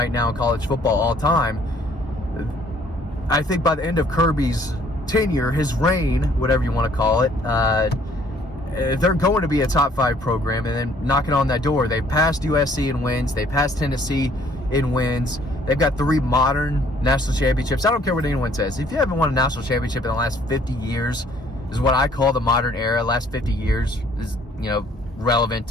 now in college football all time. I think by the end of Kirby's tenure, his reign, whatever you want to call it, they're going to be a top 5 program. And then knocking on that door, they've passed USC in wins. They passed Tennessee in wins. They've got 3 modern national championships. I don't care what anyone says. If you haven't won a national championship in the last 50 years, is what I call the modern era. Last 50 years is, relevant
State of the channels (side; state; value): both; normal; correlation 0.61